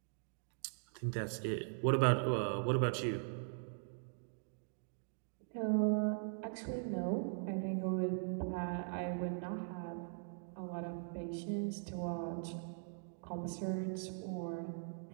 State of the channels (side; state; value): left; silent; digital silence